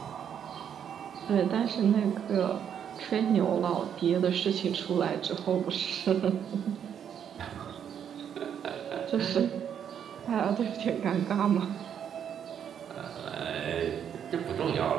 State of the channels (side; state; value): left; quieter; 8.6 dB